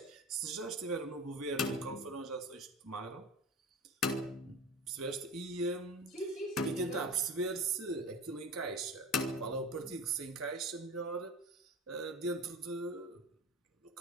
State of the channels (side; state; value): both; normal; correlation 0.33